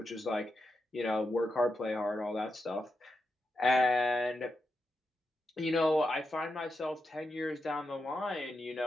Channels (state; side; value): normal; both; correlation 0.87